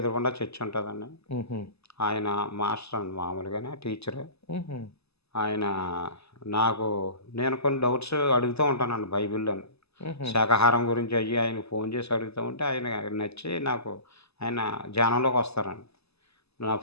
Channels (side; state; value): right; late; 0.79 ms